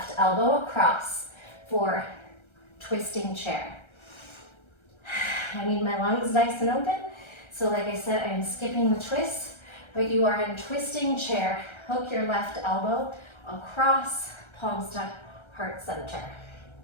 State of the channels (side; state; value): right; late; 1.3 ms